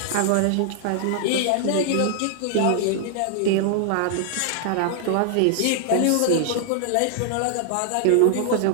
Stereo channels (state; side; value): different; both; correlation -0.01